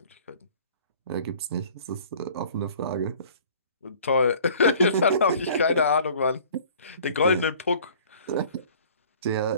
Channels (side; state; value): both; inverted; correlation -0.50